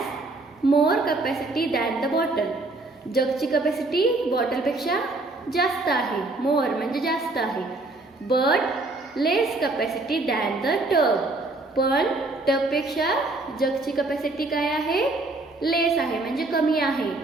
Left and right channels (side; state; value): left; quieter; 3.1 dB